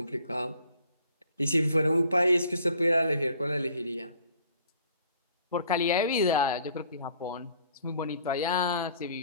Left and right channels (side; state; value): both; inverted; correlation -0.57